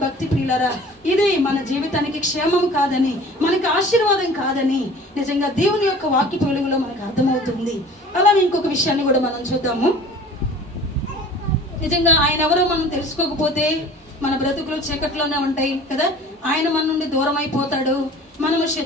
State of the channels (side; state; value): both; normal; correlation 0.45